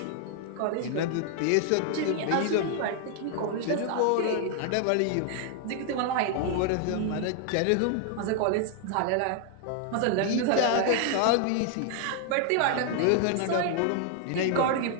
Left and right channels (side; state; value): both; different; correlation 0.00